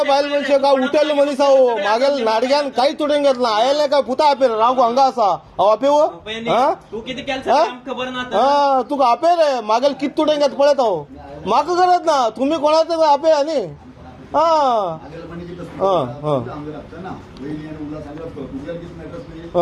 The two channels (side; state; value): both; identical; correlation 1.00